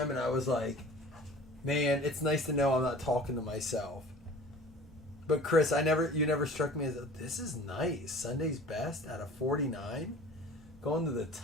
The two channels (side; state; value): both; normal; correlation 0.44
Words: and I was like, man, it's nice to know I'm not talking to myself. But Chris, you never struck me as this is nice. Sunday's best out of 49. Going to the